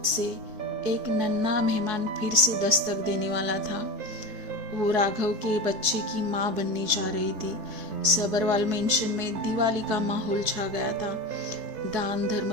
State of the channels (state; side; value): late; left; 4.7 ms